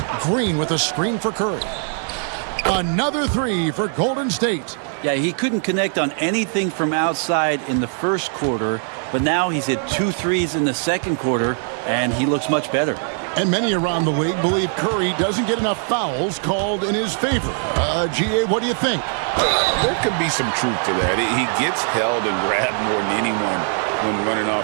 Green with a screen for Curry. Another three for Golden State. Yeah, he couldn't connect on anything from outside in the first quarter, but now he's hit 2 threes in the second quarter, and he looks much better. And many around the league believe Curry doesn't get enough fouls called in his favor. GA, what do you think? There could be some truth to that. He gets held and grabbed more than anyone when running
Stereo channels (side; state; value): left; silent; 55 dB below the other